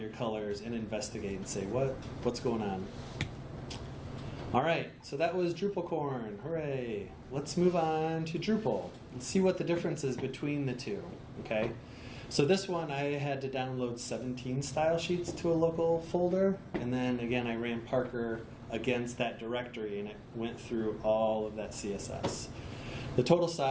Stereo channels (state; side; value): identical; both; correlation 1.00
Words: colors and investigate and say, what's going on? All right, so that was DrupalCorn. Hooray. Let's move on to Drupal. Let's see what the difference is between the two, okay? So this one, I had to download 17 style sheets to a local folder, and then again, I ran Parker against that directory, and it went through all of that CSS. The total